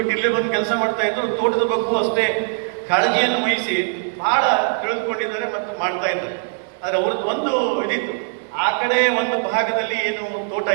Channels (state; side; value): silent; left; 62 dB below the other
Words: ಇಲ್ಲೇ ಬಂದು ಕೆಲಸ ಮಾಡ್ತಾ ಇದ್ರು. ತೋಟದ ಬಗ್ಗೂ ಅಷ್ಟೇ ಕಾಳಜಿಯನ್ನು ವಹಿಸಿ ಬಹಳ ತಿಳಿದುಕೊಂಡಿದ್ದಾರೆ ಮತ್ತು ಮಾಡ್ತಾ ಇದ್ದಾರೆ. ಆದರೆ ಅವ್ರದ್ದು ಒಂದು ಇದಿತ್ತು, ಆ ಕಡೆ ಒಂದು ಭಾಗದಲ್ಲಿ ಏನು ತೋಟ